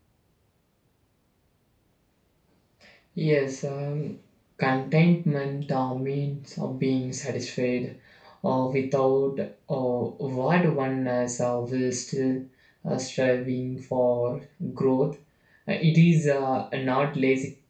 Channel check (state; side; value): identical; both; correlation 1.00